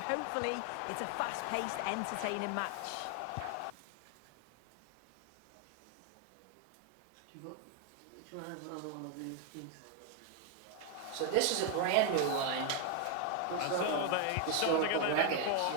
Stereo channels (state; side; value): different; both; correlation 0.01